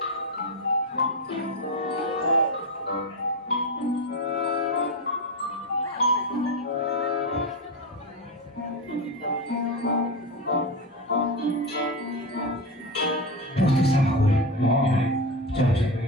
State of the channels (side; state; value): both; normal; correlation 0.17